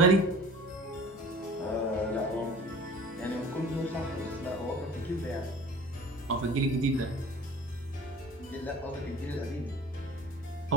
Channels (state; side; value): normal; both; correlation 0.43